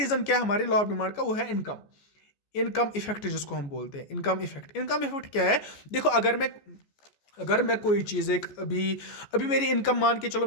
क्या है हमारे लॉ ऑफ डिमांड का? वो है इनकम, इनकम इफेक्ट जिसको हम बोलते हैं इनकम इफेक्ट। इनकम इफेक्ट क्या है? देखो अगर मैं कोई चीज़ एक अभी अभी मेरी इनकम, मान के चलो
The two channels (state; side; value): late; right; 14 ms